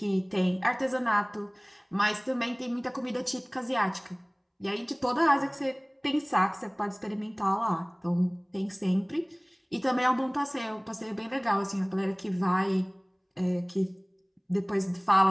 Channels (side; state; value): both; identical; correlation 1.00